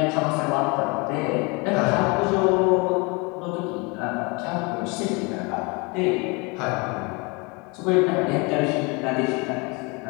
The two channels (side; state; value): right; quieter; 28.9 dB